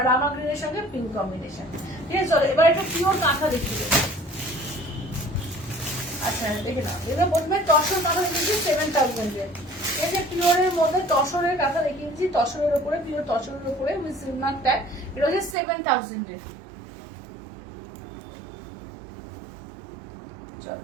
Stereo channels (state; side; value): drops out; left; at 15.6 s